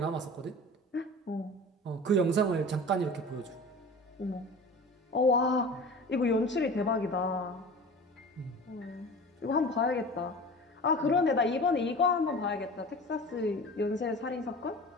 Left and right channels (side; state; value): both; normal; correlation 0.37